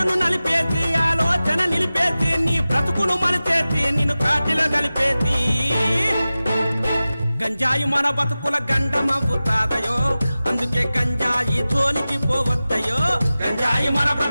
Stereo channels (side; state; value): both; inverted; correlation -0.96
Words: నలిపేసి ఆలోచన నిలిపేసి నీ బ్రతుకును మలిచేసి నిన్ను కాటిలో కలిపేసి గంజాయి మన బతుకుల గండమవుతాదయో అందుకే గంజాయి జోలికి పోవద్దయో గంజాయి మన